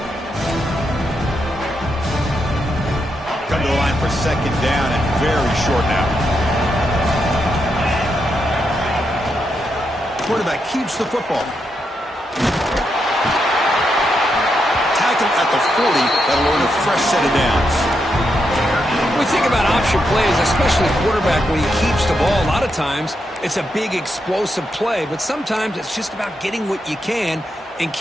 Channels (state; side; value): normal; both; correlation 0.83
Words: Come to the line for second down and very short now. Quarterback keeps the football. Tackle at the 40. That'll earn a fresh set of downs. When we think about option plays, especially quarterback, when he keeps the ball, a lot of times it's a big explosive play, but sometimes it's just about getting what you can and